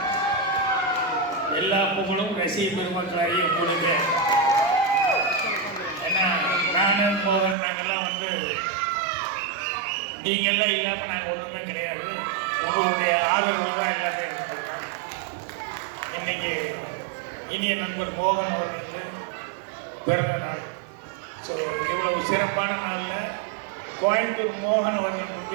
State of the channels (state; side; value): drops out; left; at 7.6 s